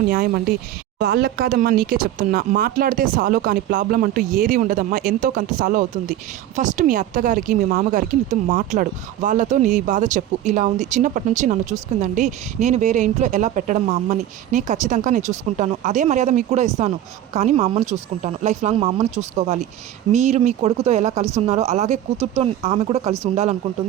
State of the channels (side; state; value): left; quieter; 12.2 dB